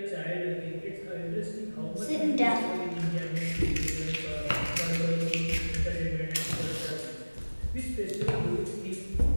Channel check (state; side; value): inverted; both; correlation -1.00